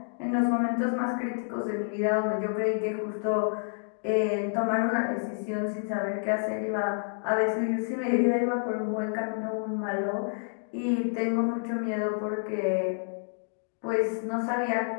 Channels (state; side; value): silent; right; digital silence